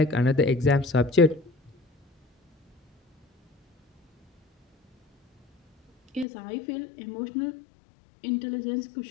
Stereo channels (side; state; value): right; drops out; at 6.2 s